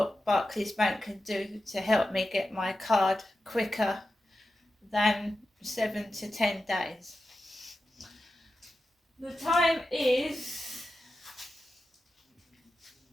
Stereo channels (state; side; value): normal; both; correlation 0.92